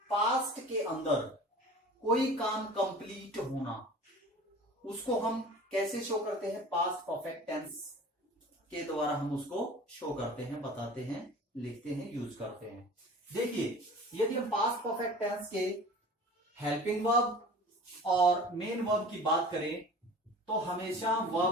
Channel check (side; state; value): both; normal; correlation 0.41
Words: पास्ट के अंदर कोई काम कंप्लीट होना, उसको हम कैसे शो करते हैं? पास्ट परफेक्ट टेंस के द्वारा हम उसको शो करते हैं, बताते हैं, लिखते हैं, यूज करते हैं। देखिए, यदि हम पास्ट परफेक्ट टेंस के हेल्पिंग वर्ब और मेन वर्ब की बात करें तो हमेशा